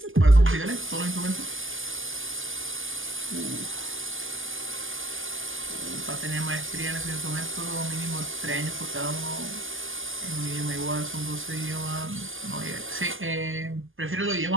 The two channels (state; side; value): late; left; 0.58 ms